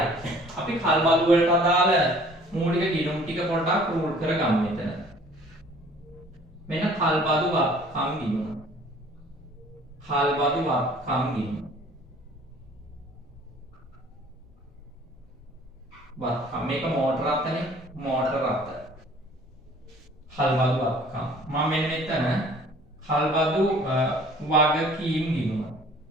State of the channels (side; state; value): both; normal; correlation 0.52